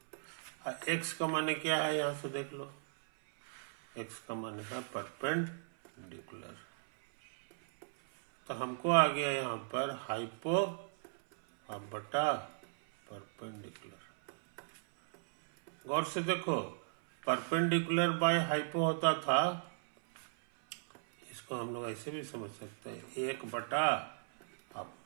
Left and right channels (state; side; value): silent; left; 53 dB below the other